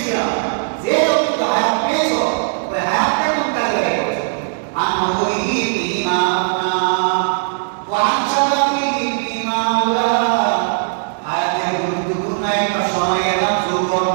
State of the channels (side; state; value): left; silent; digital silence